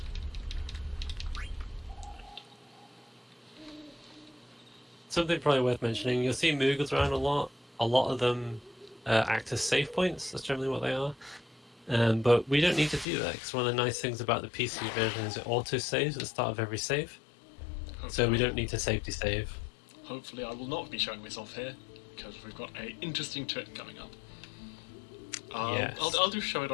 Something probably worth mentioning, you'll see Moogles around a lot. A lot of them act as save points, that's generally what they are. But we don't need to do that, because one of the nice things about the PC version is it auto-saves at the start of every save. So we don't need to safety save. Hopefully I will not be showing this off here, because we've got an interesting trick coming up. Yes. I'll just show it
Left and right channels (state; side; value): drops out; right; at 13.1 s